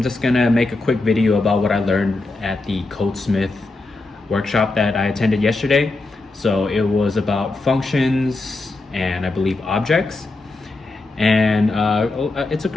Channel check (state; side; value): quieter; right; 3.2 dB